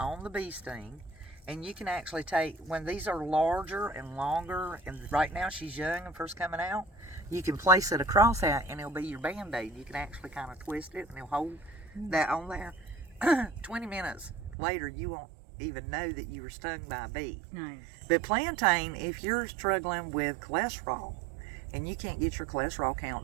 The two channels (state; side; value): drops out; left; at 14.6 s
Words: the bee sting. And you can actually take, when these are larger and longer, and right now she's young and first coming out, you can place it across that and it'll be your Band-Aid. You can actually kind of twist it and it'll hold that on there. 20 minutes later, you won't even know that you were stung by a bee. Nice. But plantain, if you're struggling with cholesterol and you can't get your cholesterol